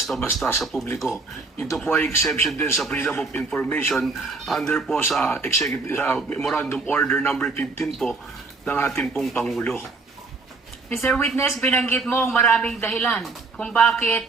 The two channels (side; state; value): left; quieter; 3.9 dB